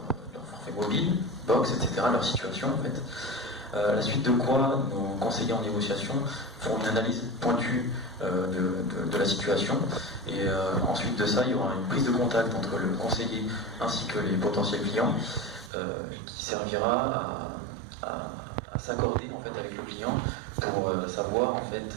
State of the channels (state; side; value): drops out; left; at 15.7 s